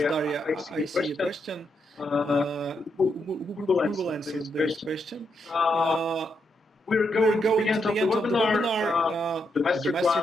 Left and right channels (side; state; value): both; normal; correlation 0.80